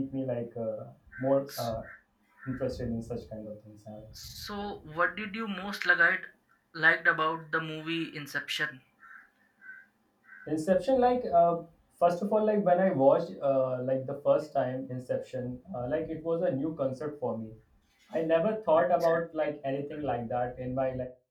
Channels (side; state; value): both; identical; correlation 1.00